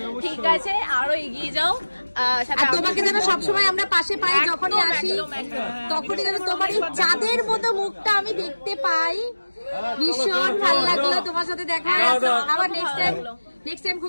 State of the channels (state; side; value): inverted; both; correlation -1.00